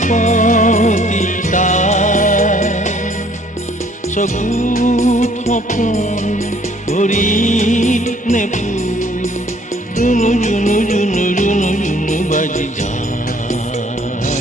তাই চকুত সপোন ভৰিত নেপুৰ, জুনু জুনু জুনু জুনু জুনু বাজি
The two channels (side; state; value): both; normal; correlation 0.60